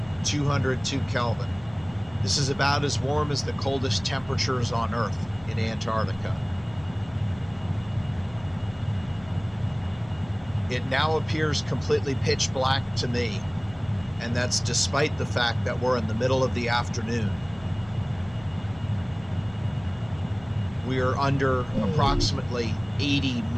202 Kelvin. This is about as warm as the coldest temperatures on Earth in Antarctica. It now appears completely pitch black to me, and that's despite the fact that we're in the middle of the afternoon. We are under approximately 80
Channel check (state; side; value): noise; left; hum, 20 dB below the sound